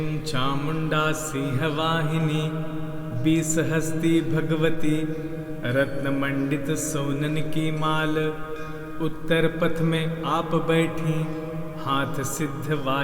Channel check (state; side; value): noise; right; hum, 25 dB below the sound